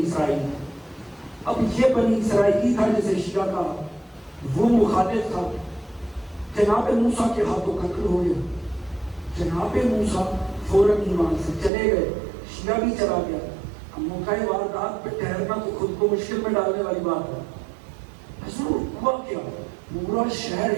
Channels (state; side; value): drops out; left; at 11.7 s